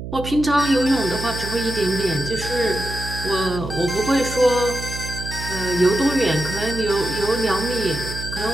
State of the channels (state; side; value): noise; right; hum, 8 dB below the sound